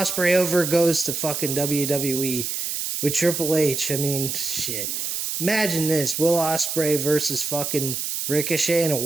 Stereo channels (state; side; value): noise; right; hiss, 3 dB below the sound